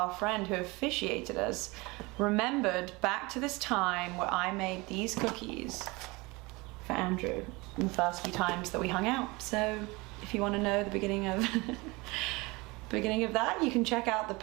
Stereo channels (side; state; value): left; quieter; 24.3 dB